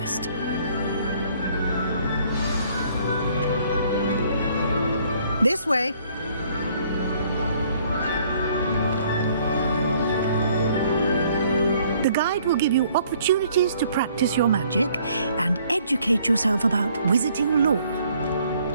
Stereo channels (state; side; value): inverted; both; correlation -0.62